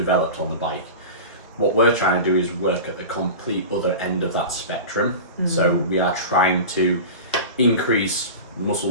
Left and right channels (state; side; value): inverted; both; correlation -0.30